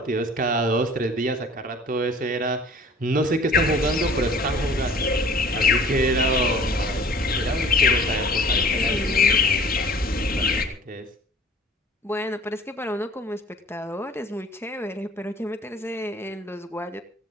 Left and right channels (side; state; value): both; normal; correlation 0.48